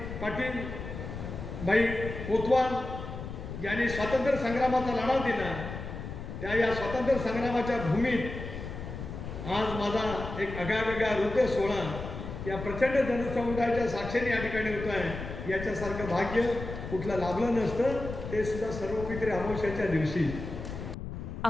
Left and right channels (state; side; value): noise; left; rumble, 8 dB below the sound